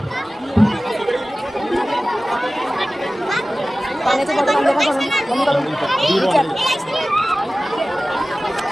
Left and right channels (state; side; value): normal; both; correlation 0.96